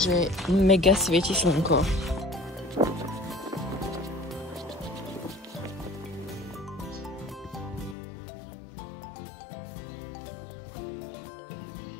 mega svieti slnko.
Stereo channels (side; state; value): right; drops out; at 8.0 s